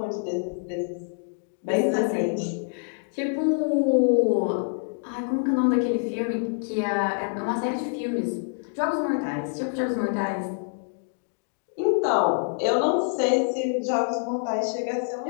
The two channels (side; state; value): right; silent; digital silence